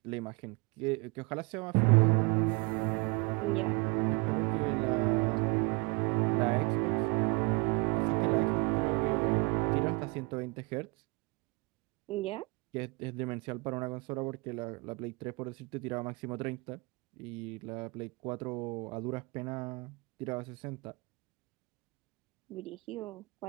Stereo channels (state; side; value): quieter; left; 28.9 dB